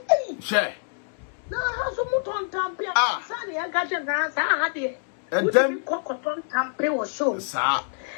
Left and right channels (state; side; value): silent; right; digital silence